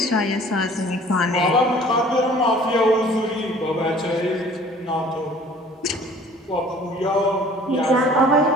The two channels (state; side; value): normal; both; correlation 0.51